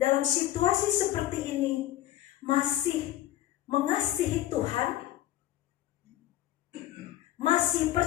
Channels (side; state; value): right; quieter; 13.8 dB